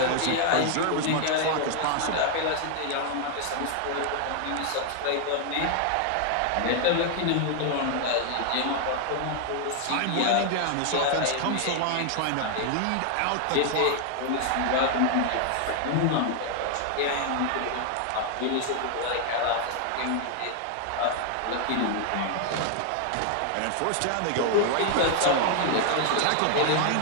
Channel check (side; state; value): both; different; correlation 0.00